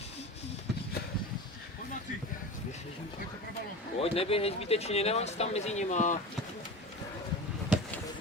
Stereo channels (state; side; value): normal; both; correlation 0.31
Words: Pojď, neběhej zbytečně, nemáš tam mezi nima.